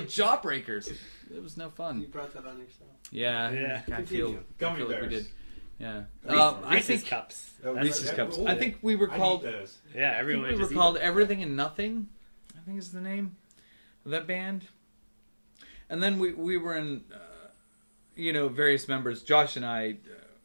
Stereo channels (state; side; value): inverted; both; correlation -1.00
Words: It was no fun. You brought that on yourself. Yeah. I feel Gummy like we bears. did. Yeah. Reese's Cups. Reese's Cups. Ooh, I think we were called... those. Yeah, I think everyone we were just called Everything and Nothing, I think is the name of that band. And then we were in, various members. Josh and I